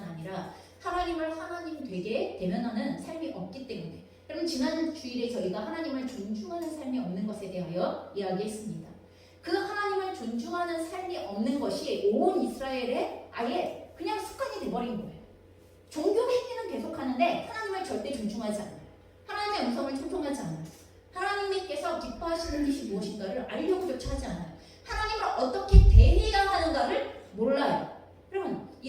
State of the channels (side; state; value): both; identical; correlation 1.00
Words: 아니라 하나님을 하나님 되게 대면하는 삶이 없기 때문에, 여러분, 지난 주일에 저희가 하나님을 존중하는 삶이 없는 것에 대하여 이야기했습니다. 그 하나님을 존중하는 삶이 없는 것이 온 이스라엘에 아예 그냥 습관이 돼버린 거예요. 종교 행위는 계속하는데 하나님을 절대 존중하지 않아요. 하나님의 음성을 청종하지 않아요. 하나님께서 기뻐하시는 것이 무엇인가를 알려고조차 하지 않아요. 하나님을 어떻게 대해야 하는가를 몰라요. 여러분,